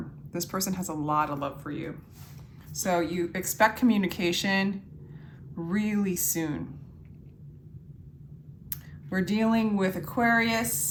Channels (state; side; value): identical; both; correlation 1.00